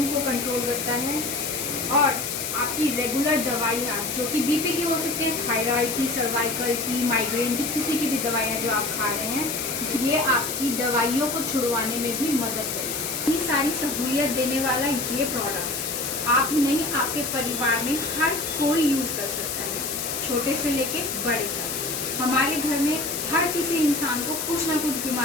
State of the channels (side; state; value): left; noise; hiss, 3 dB below the sound